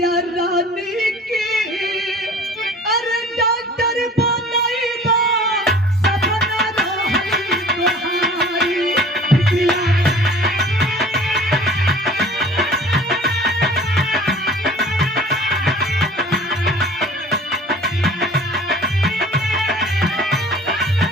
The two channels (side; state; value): both; normal; correlation 0.46